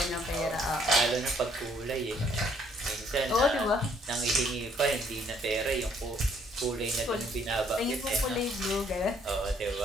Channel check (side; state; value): both; normal; correlation 0.65